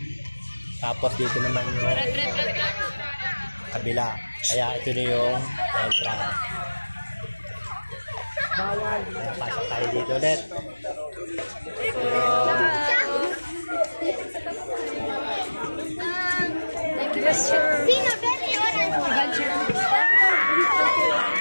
Tapos dito naman yung kabila. Kaya ito na yung entrance. Kaya pasok tayo dito ulit. Sino, Benny?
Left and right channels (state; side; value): inverted; both; correlation -1.00